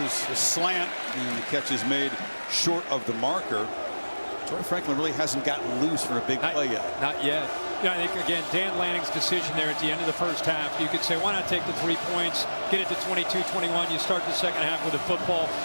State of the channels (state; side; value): inverted; both; correlation -1.00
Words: a slant, and the catch is made short of the marker. Troy Franklin really hasn't gotten loose for a big play yet. Not yet. Yeah, I think, again, Dan Lanning's decision there at the end of the first half, you could say, why not take the 3 points, get it to 22-21, you start the second half with a football.